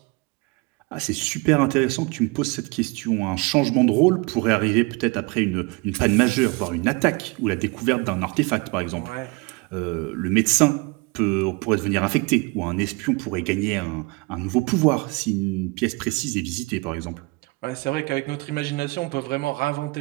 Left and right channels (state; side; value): quieter; left; 26.3 dB